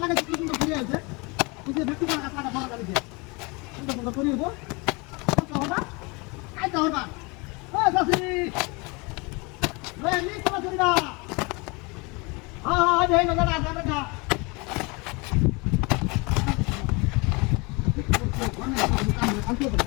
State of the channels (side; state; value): right; quieter; 28.1 dB